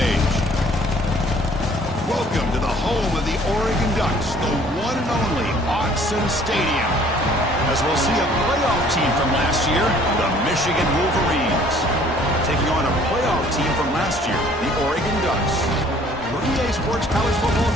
Welcome to the home of the Oregon Ducks, the one and only Autzen Stadium. As we'll see a playoff team from last year, the Michigan Wolverines, taking on a playoff team from last year, the Oregon Ducks. For EA Sports College Football,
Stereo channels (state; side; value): normal; both; correlation 0.56